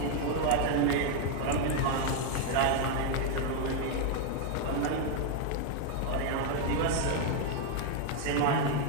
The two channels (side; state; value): both; different; correlation 0.01